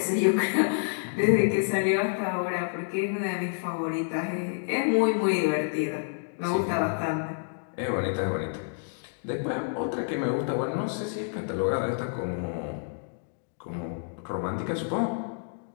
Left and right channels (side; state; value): right; silent; digital silence